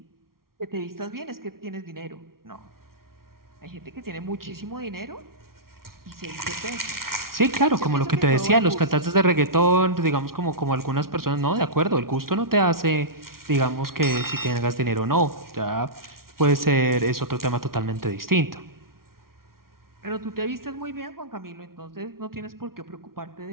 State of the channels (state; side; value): late; left; 0.93 ms